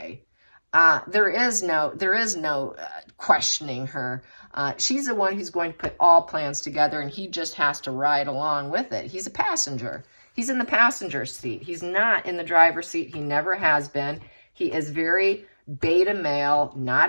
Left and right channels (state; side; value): inverted; both; correlation -1.00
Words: There is no questioning her. She's the one who's going to put all plans together, and he just has to ride along with it. He's a passenger. He's in the passenger seat. He's not in the driver's seat. He never has been. He is very beta male,